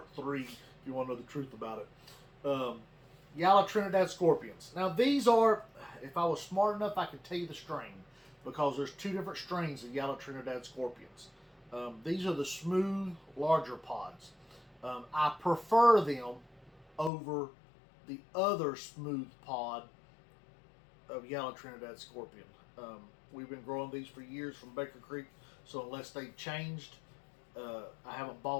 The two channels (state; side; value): drops out; right; at 17.1 s